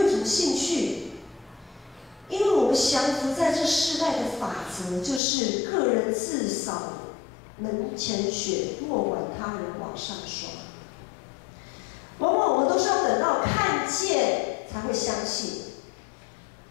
什么兴趣，因为我们降服在这世代的法则，就是个人自扫门前雪，莫管他人网上霜。往往我们都是要等到看见才会相信。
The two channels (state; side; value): drops out; right; at 5.2 s